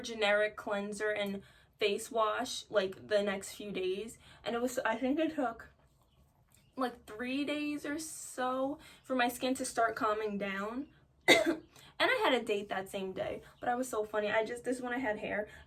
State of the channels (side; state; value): both; identical; correlation 1.00